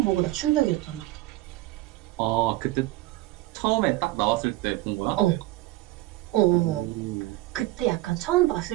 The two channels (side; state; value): left; quieter; 17.9 dB